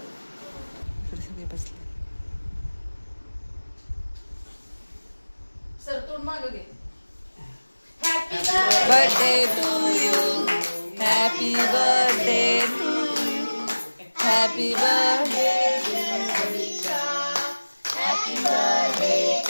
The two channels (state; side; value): inverted; both; correlation -1.00